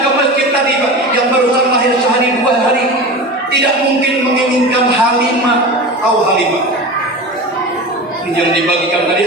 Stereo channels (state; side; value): normal; both; correlation 0.30